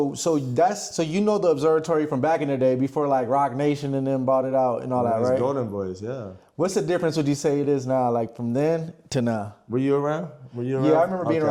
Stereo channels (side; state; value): both; identical; correlation 1.00